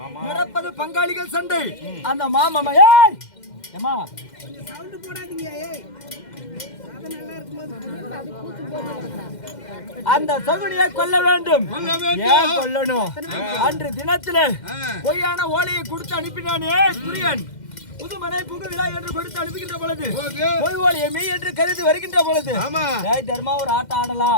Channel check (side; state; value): right; late; 2.1 ms